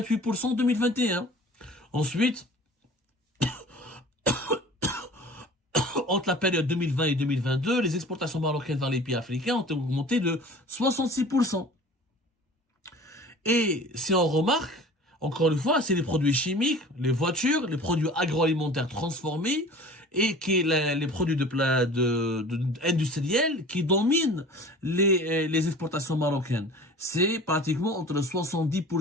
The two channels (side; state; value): both; normal; correlation 0.42